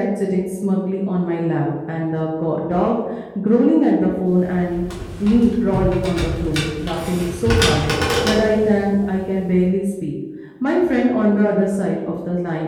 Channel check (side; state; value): both; identical; correlation 1.00